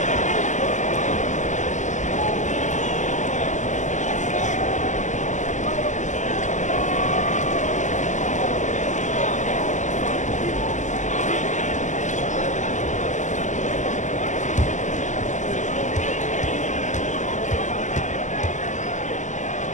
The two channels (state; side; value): late; right; 0.35 ms